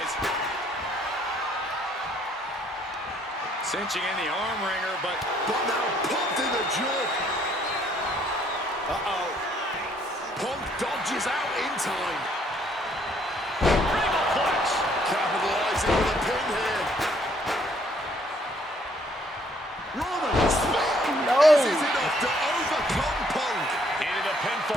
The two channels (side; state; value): both; normal; correlation 0.65